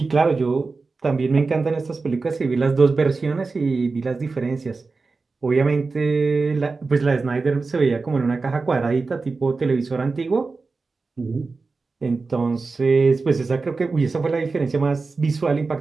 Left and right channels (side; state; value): left; quieter; 4.1 dB